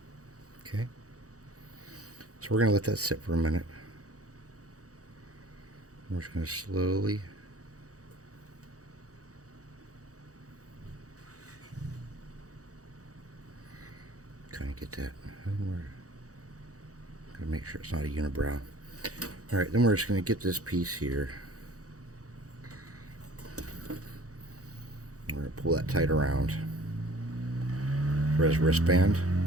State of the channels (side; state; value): left; late; 0.66 ms